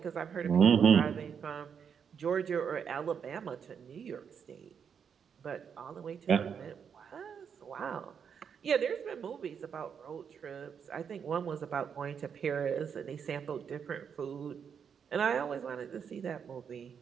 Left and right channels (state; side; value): quieter; left; 7.2 dB